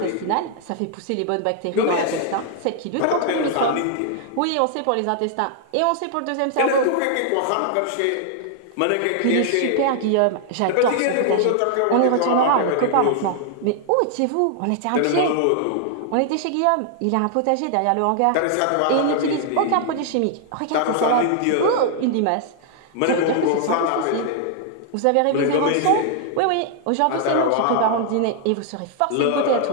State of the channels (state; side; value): different; both; correlation 0.00